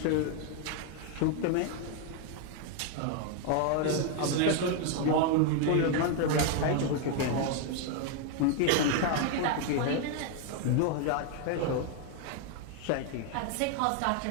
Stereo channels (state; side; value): different; both; correlation 0.00